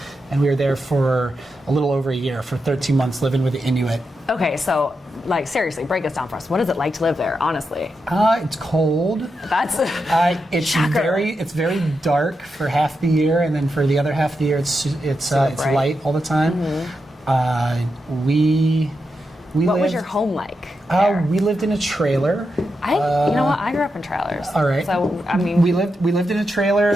And we were there for a little over a year, for 13 months, living with the Inuit. Okay, so, like, seriously, break this down for us. What is it like to live there, honestly? It's cold. That's it's shocker. very dark for half the year, and then for the other half of the year, it's bright. light all the time. We What was lived- your home like there? We lived in a trailer. you know what? I grew up in trailers. All right. So, I mean... We lived in a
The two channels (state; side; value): normal; both; correlation 0.87